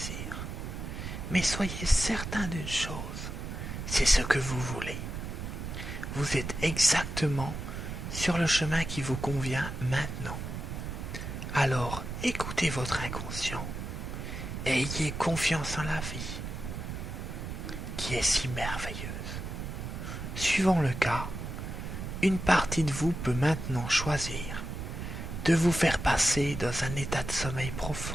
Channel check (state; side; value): noise; right; rumble, 6 dB below the sound